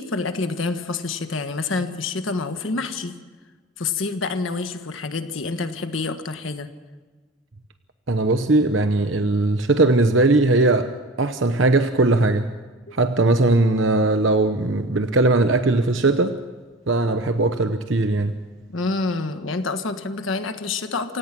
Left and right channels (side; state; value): both; normal; correlation 0.36